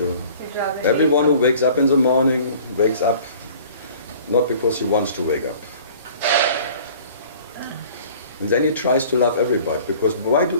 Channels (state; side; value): inverted; both; correlation -0.49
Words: Everyone who wakes up in the morning wakes up not because he wants to wake up. And then he tries to love everybody, because why